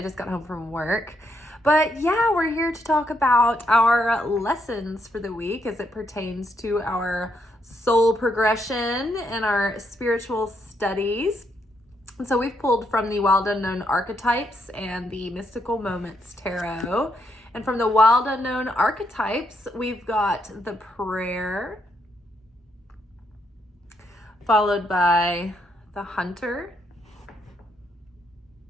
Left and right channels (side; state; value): both; normal; correlation 0.77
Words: just got home from work. But yeah, we're here to talk about our lessons for the week as it pertains to our soul progression and our spiritual studies. And so we've pulled from the Wild Unknown Archetypes and the Mystical Moments Tarot. And from the Wild Unknown Archetypes, we've got the prayer, followed by the hunter,